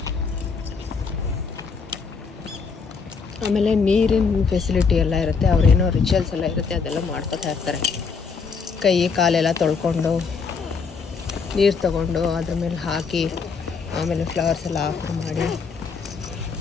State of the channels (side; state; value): right; quieter; 5.3 dB